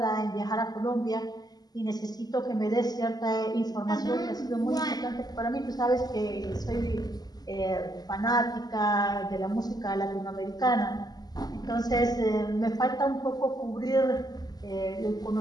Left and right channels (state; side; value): late; right; 0.19 ms